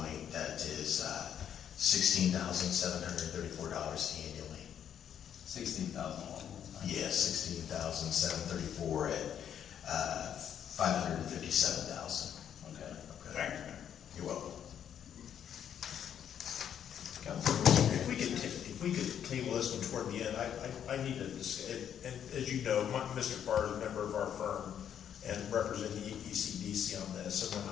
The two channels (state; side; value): quieter; right; 9.2 dB